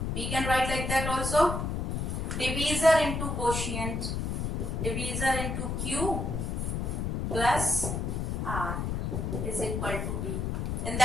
we can write like that also. Divisor into quotient. Divisor into Q plus R is equal to B. In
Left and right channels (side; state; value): left; noise; rumble, 1 dB below the sound